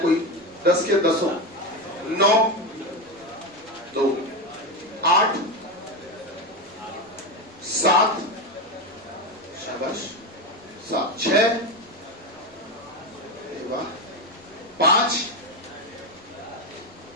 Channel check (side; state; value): both; normal; correlation 0.15